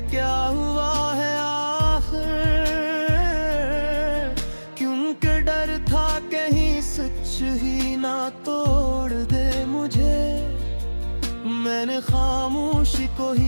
क्या हुआ है आखिर, क्योंकि डर था कहीं सच ही ना तोड़ दे मुझे। मैंने खामोशी को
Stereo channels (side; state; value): both; inverted; correlation -1.00